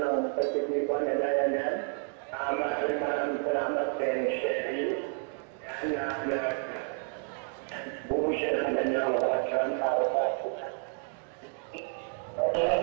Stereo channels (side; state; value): left; quieter; 39.9 dB